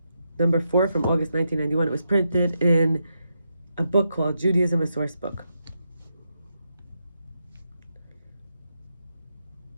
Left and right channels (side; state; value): both; inverted; correlation -0.84